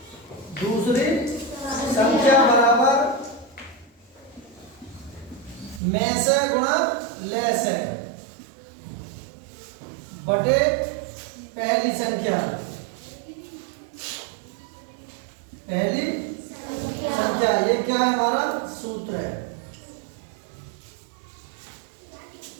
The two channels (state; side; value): drops out; left; at 5.8 s